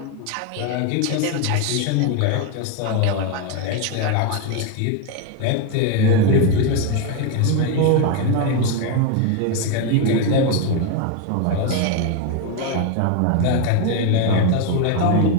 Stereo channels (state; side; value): different; both; correlation 0.02